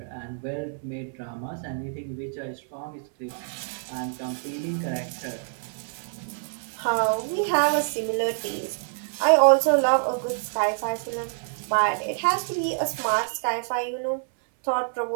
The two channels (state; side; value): silent; left; 61 dB below the other